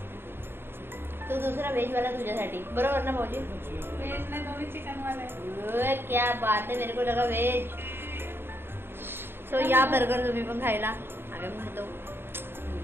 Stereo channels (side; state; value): left; late; 0.11 ms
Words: तो दुसरा व्हेजवाला तुझ्यासाठी बरोबर ना भाऊजी? व्हेज नाही, दोन्ही चिकन वाला. क्या बात है, मेरे को लगा व्हेज. सो या बर्गर तुम्ही पण खायला. आम्ही पण खातो.